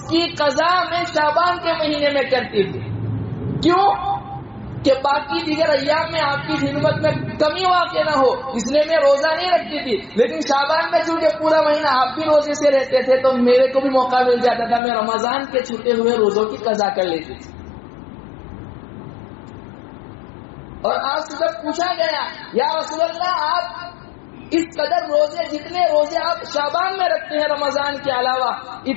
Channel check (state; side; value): drops out; right; at 14.8 s